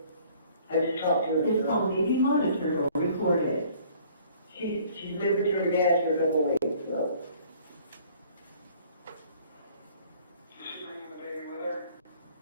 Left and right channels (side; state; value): both; inverted; correlation -0.56